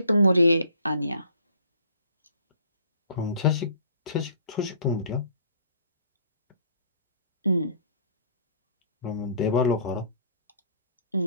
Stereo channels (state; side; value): inverted; both; correlation -0.55